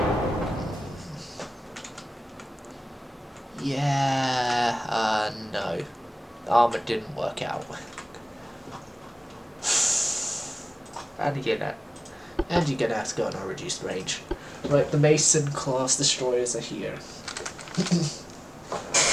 yeah, no. Armor didn't work out. And you're gonna have to go on a reduced range. Right, the Mason class destroyers are here.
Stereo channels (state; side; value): normal; both; correlation 0.98